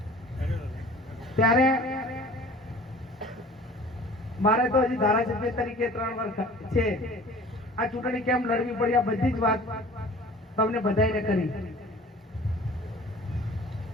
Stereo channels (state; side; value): normal; both; correlation 0.46